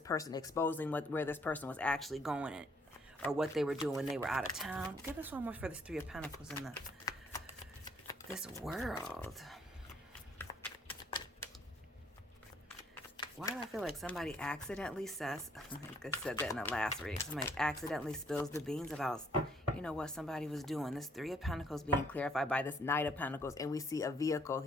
exposing where this person was actually going, or what they were doing when they were out of town. Give us one more for this Three of Pentacles in this world. Why do I feel like somebody accidentally says, I think I said that in the last reading, somebody accidentally spills the beans about, you know, what somebody was doing. This Three of Pentacles being clarified by this Knight of Pentacles, and we see a vehicle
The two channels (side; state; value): both; normal; correlation 0.66